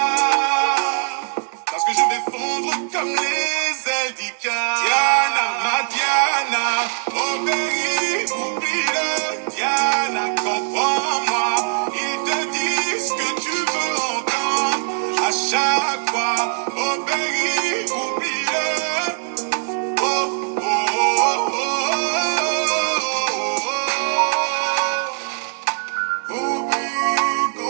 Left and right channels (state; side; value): silent; left; digital silence